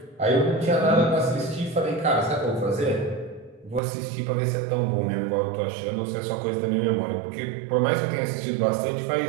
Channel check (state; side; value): drops out; left; at 3.8 s